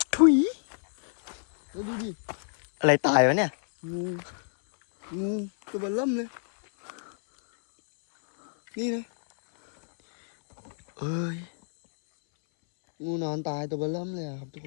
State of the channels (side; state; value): right; silent; 60 dB below the other